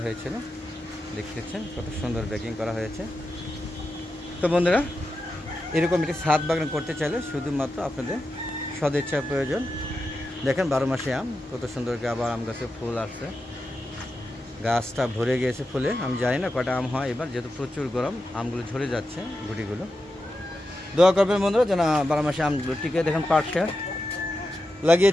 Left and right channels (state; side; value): normal; both; correlation 0.89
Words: হয়েছিল। দেখতেছেন কত সুন্দর ব্যাগিং করা হয়েছে। তো বন্ধুরা, এরকম একটি ছাদ বাগান করতে চাইলে শুধুমাত্র আপনাদের সদিচ্ছার প্রয়োজন। দেখেন 12 মাসে আম, কত সুন্দর আবার আম গাছে ফুল আসছে, গাছটা ভরে গিয়েছে ফুলে। আমি জানি না কটা আম হয় এবার, যেহেতু প্রচুর গরম আমগুলো ঝরে যাচ্ছে গুটিগুলো। দোয়া করবেন বন্ধুরা যেন 12 মাসে আমগুলো টিকে। দেখেন পাটটা